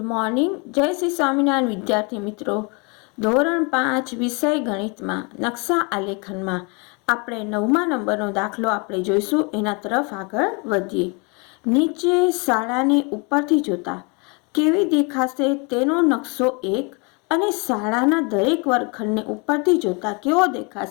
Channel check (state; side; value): quieter; right; 31.8 dB